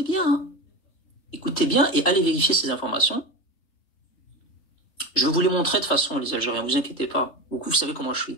bien et allez vérifier ces informations. Je vais vous les montrer de façon, les Algériens, vous inquiétez pas. Vous savez comment je suis.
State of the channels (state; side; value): late; right; 3.3 ms